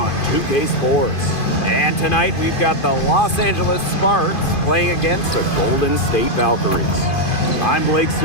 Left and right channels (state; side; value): late; right; 2.5 ms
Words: 2K Sports. And tonight we've got the Los Angeles Sparks playing against the Golden State Valkyries. I'm Blake